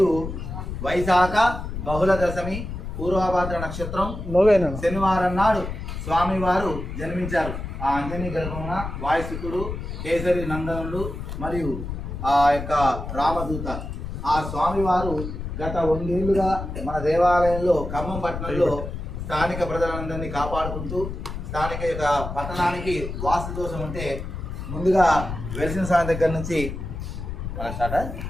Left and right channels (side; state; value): left; noise; rumble, 7 dB below the sound